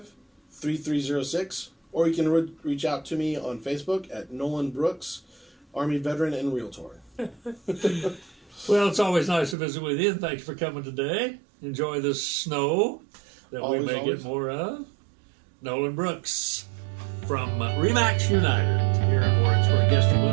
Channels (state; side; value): drops out; left; at 9.6 s